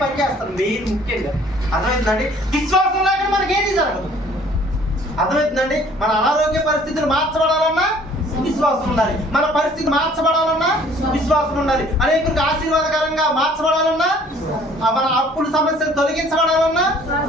పని చేస్తాం మెయిన్, ముఖ్యంగా. అర్థమవుతుందండి? విశ్వాసం లేకుండా మనకి ఏది జరగదు. అర్థమవుతుందండి? మన అనారోగ్య పరిస్థితులు మార్చబడాలన్నా విశ్వాసం ఉండాలి, మన పరిస్థితి మార్చబడాలన్నా విశ్వాసం ఉండాలి, అనేకులకు ఆశీర్వాదకరంగా మార్చబడాలన్నా, మన అప్పుల సమస్యలు తొలగించబడాలన్నా,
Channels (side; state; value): both; normal; correlation 0.55